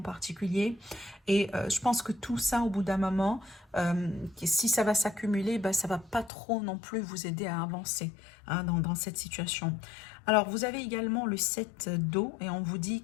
particulier. Et je pense que tout ça, au bout d'un moment, si ça va s'accumuler, bah, ça va pas trop non plus vous aider à avancer, hein, dans cette situation. Alors, vous avez également le 7 d'eau et on vous dit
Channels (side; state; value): right; drops out; at 6.3 s